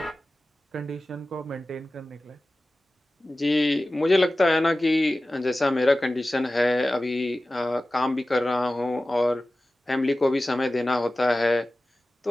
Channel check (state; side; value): normal; both; correlation 0.96